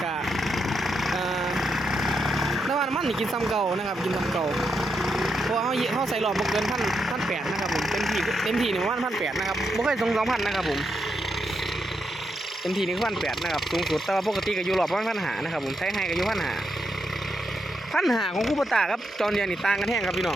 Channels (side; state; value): both; normal; correlation 0.82